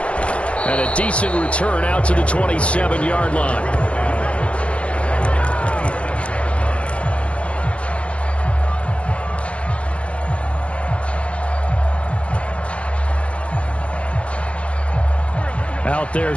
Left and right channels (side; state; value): right; late; 0.061 ms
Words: And a decent return out to the 27-yard line. Out there